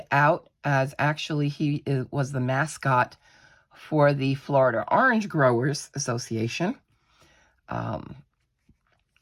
out as he was the mascot for the Florida Orange Growers Association.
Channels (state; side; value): identical; both; correlation 1.00